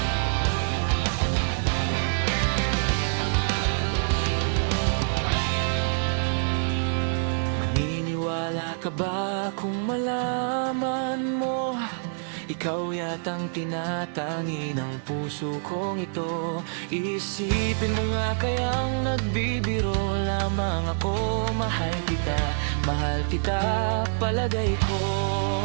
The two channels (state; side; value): silent; left; digital silence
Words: ka ba kung malaman mo ikaw yatang tinatangi ng puso kong ito? Isipin mo nga kayang nagbibiro lamang ako. Mahal kita, palagay ko.